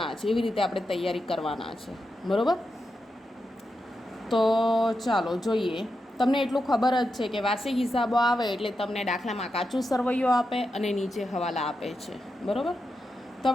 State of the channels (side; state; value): both; normal; correlation 0.87